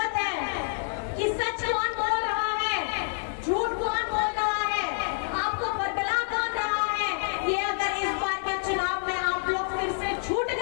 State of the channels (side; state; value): right; silent; digital silence